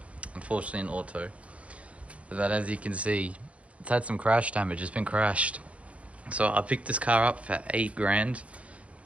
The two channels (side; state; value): left; late; 0.064 ms